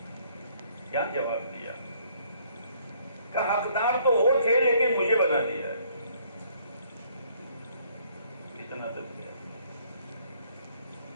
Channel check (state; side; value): inverted; both; correlation -0.64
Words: کیا جواب دیا؟ کہ حقدار تو وہ تھے لیکن مجھے بنا دیا ہے. اتنا تک.